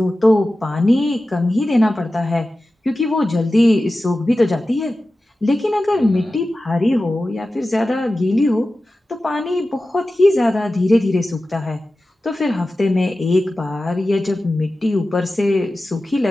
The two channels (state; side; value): normal; both; correlation 0.94